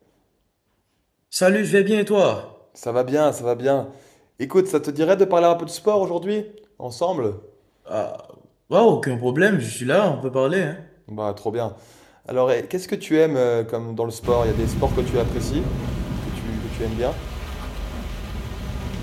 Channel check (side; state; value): both; identical; correlation 1.00